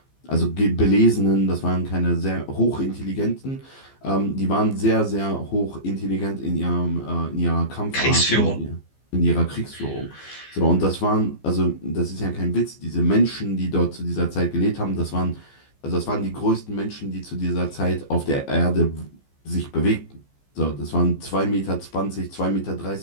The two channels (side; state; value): right; late; 15 ms